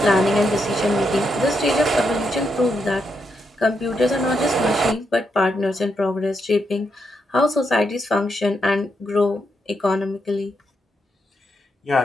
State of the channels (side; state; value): both; normal; correlation 0.81